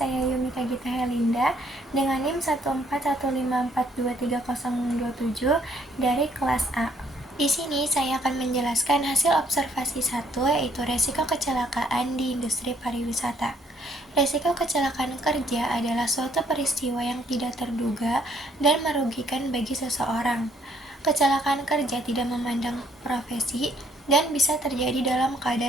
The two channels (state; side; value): normal; both; correlation 0.67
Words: Yumika Gita Helinda dengan NIM 14154230027 dari kelas A. Di sini saya akan menjelaskan hasil observasi 1, yaitu resiko kecelakaan di industri pariwisata. Resiko kecelakaan kerja adalah suatu peristiwa yang tidak terduga dan merugikan bagi seseorang. Kecelakaan kerja tidak memandang profesi dan bisa terjadi dalam